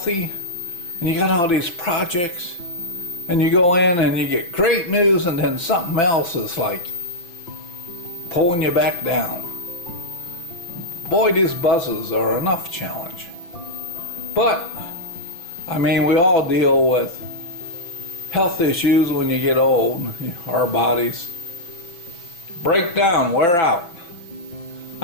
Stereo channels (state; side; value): late; right; 6.0 ms